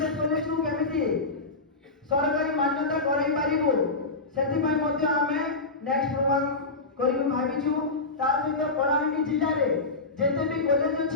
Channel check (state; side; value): quieter; right; 3.5 dB